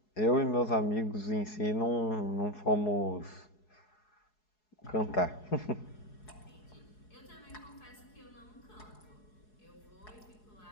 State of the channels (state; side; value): late; right; 4.7 ms